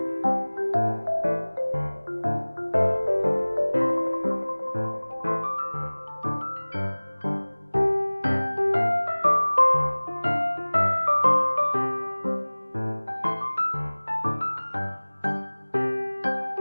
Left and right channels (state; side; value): inverted; both; correlation -1.00